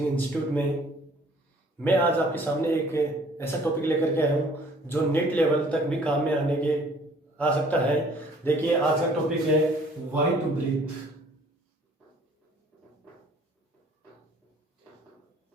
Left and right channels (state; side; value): normal; both; correlation 0.56